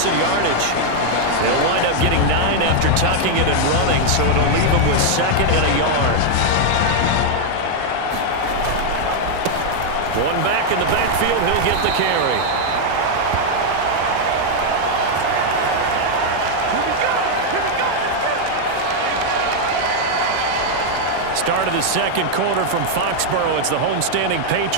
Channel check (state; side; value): different; both; correlation 0.00